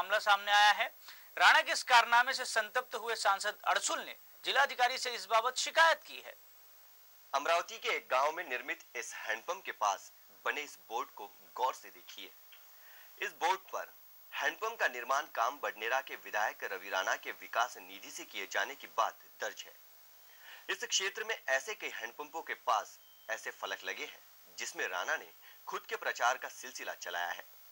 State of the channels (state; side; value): identical; both; correlation 1.00